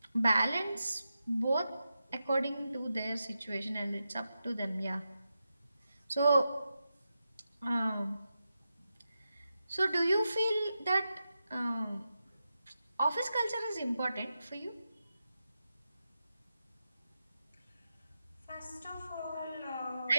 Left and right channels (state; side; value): inverted; both; correlation -0.89